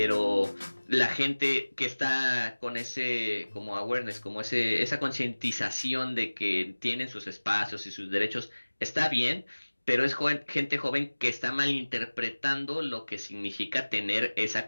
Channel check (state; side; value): inverted; both; correlation -1.00